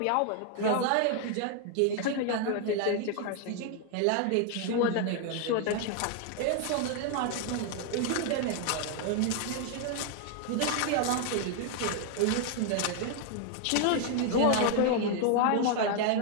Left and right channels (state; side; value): different; both; correlation 0.00